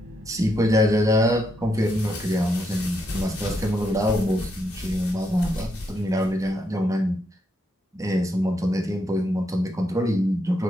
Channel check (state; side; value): normal; both; correlation 0.79